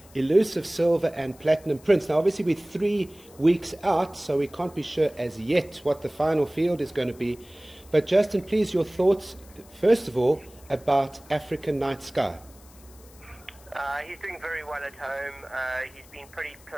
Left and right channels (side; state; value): left; noise; hiss, 25 dB below the sound